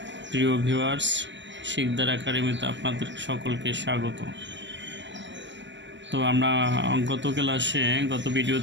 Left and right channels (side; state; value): left; late; 0.53 ms